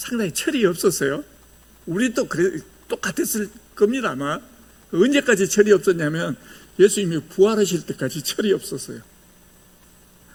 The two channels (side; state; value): both; identical; correlation 1.00